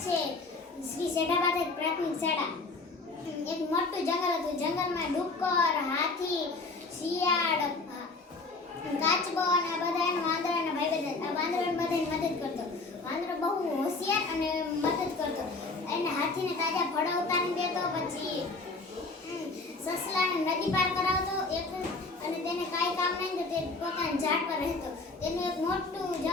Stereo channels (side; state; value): right; quieter; 3.6 dB